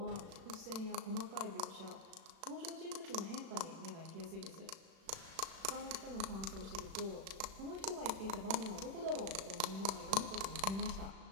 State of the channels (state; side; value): late; left; 36 ms